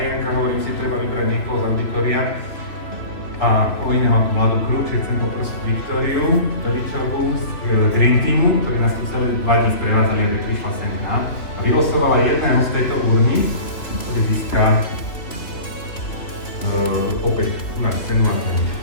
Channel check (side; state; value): right; late; 3.0 ms